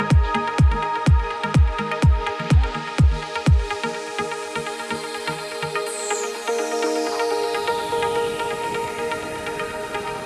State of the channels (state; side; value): identical; both; correlation 1.00